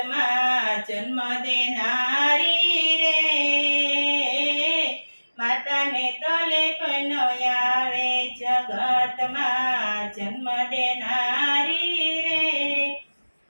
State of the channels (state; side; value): inverted; both; correlation -1.00